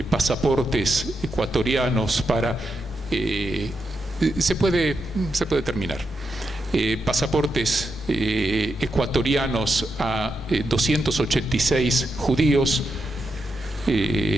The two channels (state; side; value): normal; both; correlation 0.85